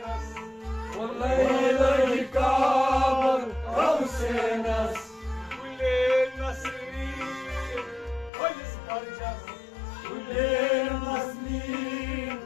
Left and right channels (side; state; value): right; drops out; at 8.3 s